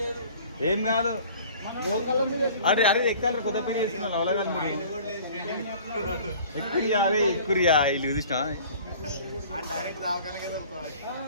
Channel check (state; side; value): inverted; both; correlation -0.47